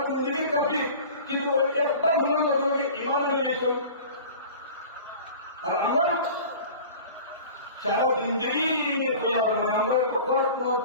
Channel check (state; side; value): inverted; both; correlation -0.41